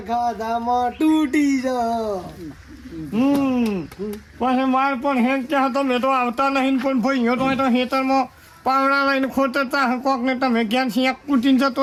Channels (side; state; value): both; identical; correlation 1.00